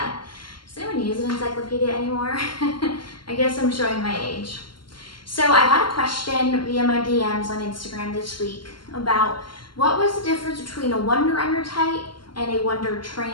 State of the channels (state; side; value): late; right; 0.72 ms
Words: Does anyone use an encyclopedia anymore? I guess I'm showing my age. So I had a question via my DMs on Instagram this week about what was the difference between a Wunder under tight and a Wunder